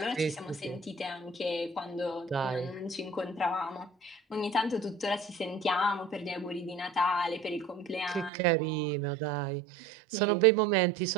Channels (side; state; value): left; drops out; at 8.3 s